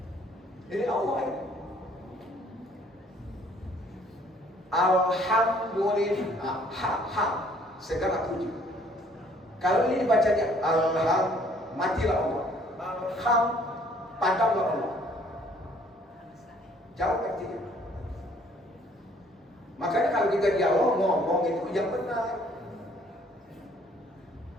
Ini Allah ya. Alhamdulillah, segala puji. Kalau ini dibacanya matilah Allah. Padamlah Allah. Jauh artinya. Makanya kalau kita dialog ngomong itu yang benar.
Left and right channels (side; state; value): both; normal; correlation 0.60